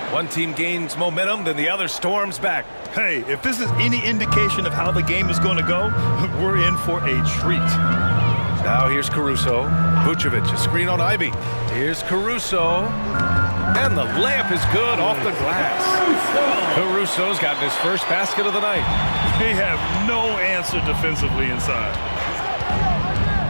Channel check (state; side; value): inverted; both; correlation -1.00